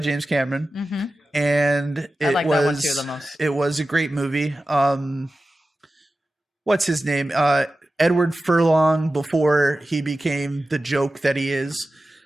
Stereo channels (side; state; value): both; normal; correlation 0.94